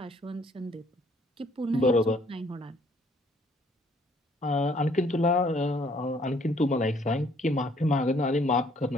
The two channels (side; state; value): both; normal; correlation 0.63